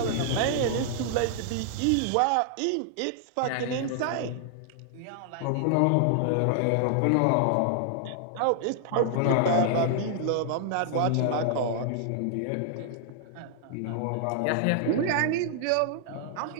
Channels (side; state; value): both; different; correlation -0.01